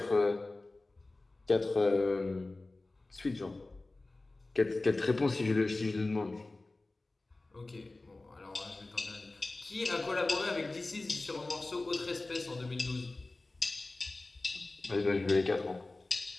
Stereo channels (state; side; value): quieter; right; 3.1 dB